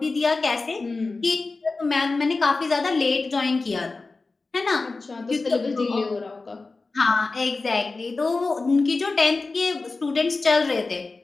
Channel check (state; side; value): quieter; right; 3.7 dB